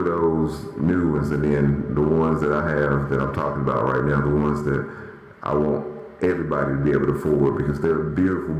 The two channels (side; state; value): both; identical; correlation 1.00